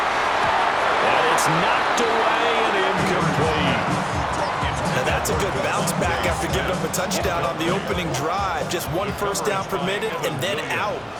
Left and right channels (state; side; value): identical; both; correlation 1.00